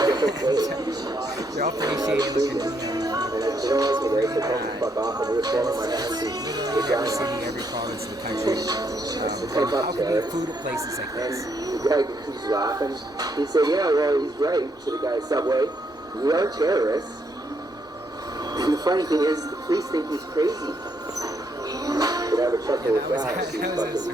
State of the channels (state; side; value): normal; both; correlation 0.75